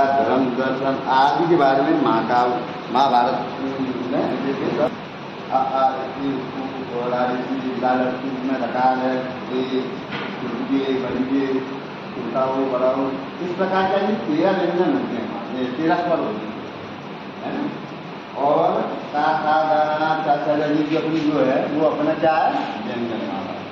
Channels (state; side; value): identical; both; correlation 1.00